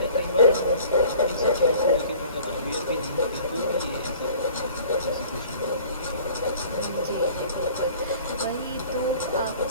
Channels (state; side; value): inverted; both; correlation -0.48